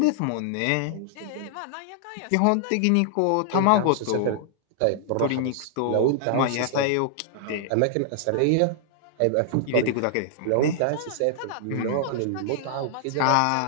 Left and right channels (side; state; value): both; different; correlation -0.01